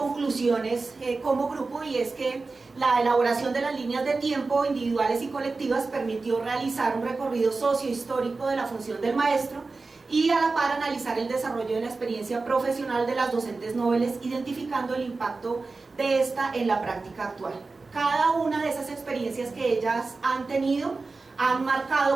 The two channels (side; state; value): left; quieter; 3.8 dB